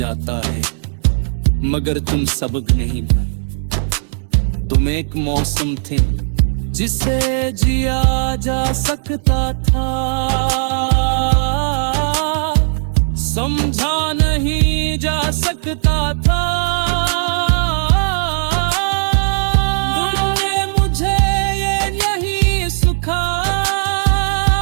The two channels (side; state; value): left; silent; digital silence